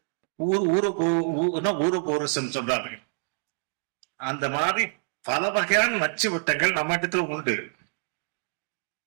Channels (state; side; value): silent; left; 60 dB below the other